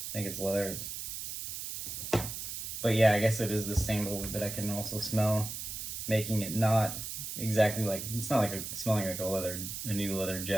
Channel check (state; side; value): noise; right; hiss, 6 dB below the sound